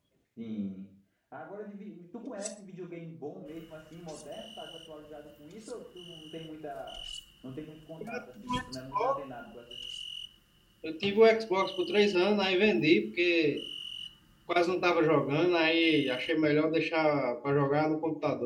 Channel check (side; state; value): both; identical; correlation 1.00